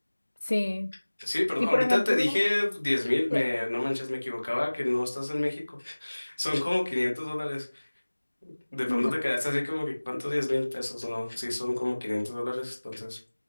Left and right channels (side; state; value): both; inverted; correlation -1.00